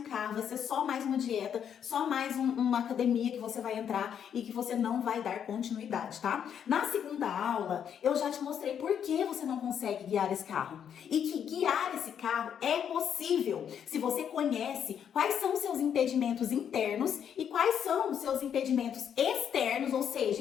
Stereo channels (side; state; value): right; quieter; 8.5 dB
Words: carro, vai ser só mais uma dieta, só mais uma academia que você vai entrar e que você não vai dar continuidade, tá? Na segunda aula, eu já te mostrei por que você não consegue guiar esse carro. E que guiar esse carro é possível se você conhece quais são os seus impedimentos internos e quais são os seus impedimentos externos, ou